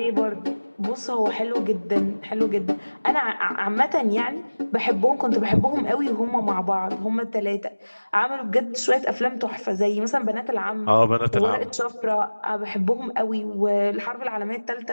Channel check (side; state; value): both; inverted; correlation -1.00